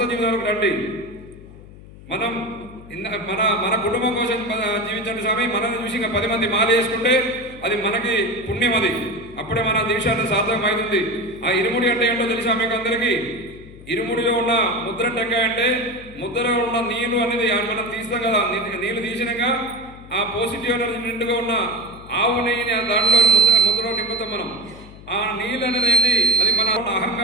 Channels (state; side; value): noise; left; hum, 19 dB below the sound